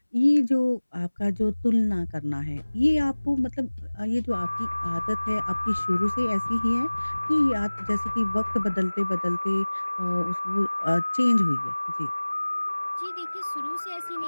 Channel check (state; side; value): inverted; both; correlation -1.00